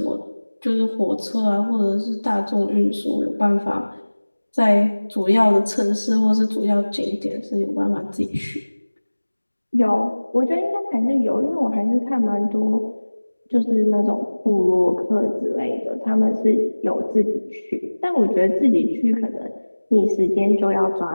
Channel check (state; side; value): inverted; both; correlation -1.00